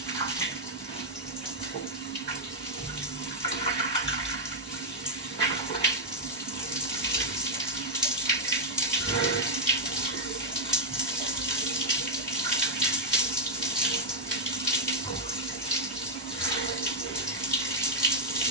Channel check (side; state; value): both; normal; correlation -0.05